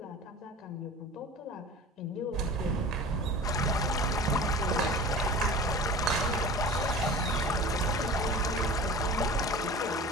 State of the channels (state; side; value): normal; both; correlation 0.38